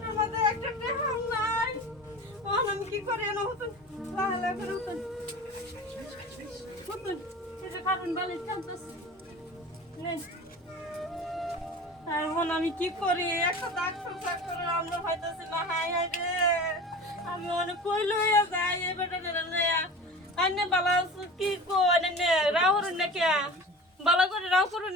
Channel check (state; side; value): normal; both; correlation 0.36